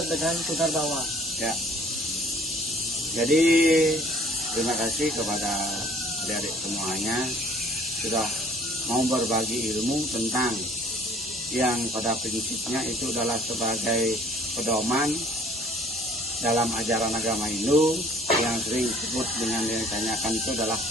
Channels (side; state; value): both; normal; correlation 0.54